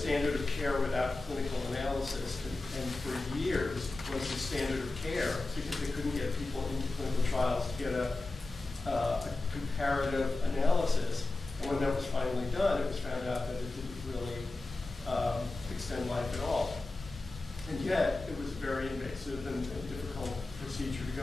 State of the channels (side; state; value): right; quieter; 3.1 dB